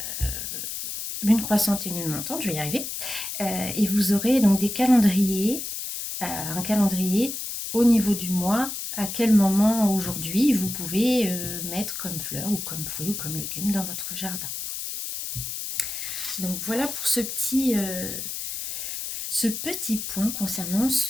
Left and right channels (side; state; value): left; noise; hiss, 5 dB below the sound